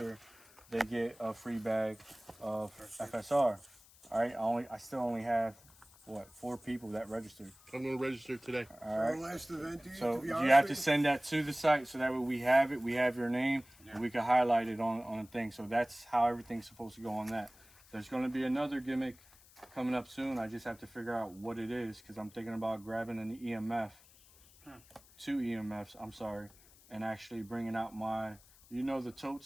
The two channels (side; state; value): left; noise; hiss, 25 dB below the sound